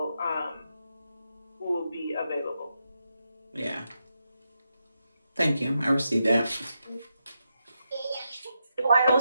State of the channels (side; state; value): both; inverted; correlation -0.85